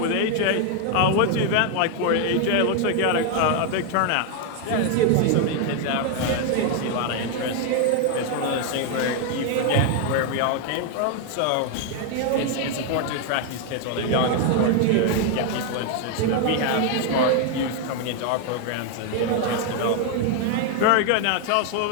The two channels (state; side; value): different; both; correlation 0.01